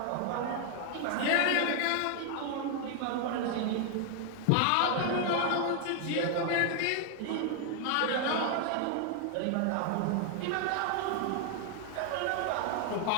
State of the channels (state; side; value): different; both; correlation 0.00